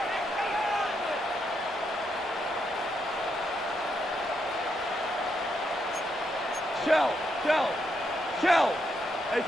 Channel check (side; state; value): both; normal; correlation 0.80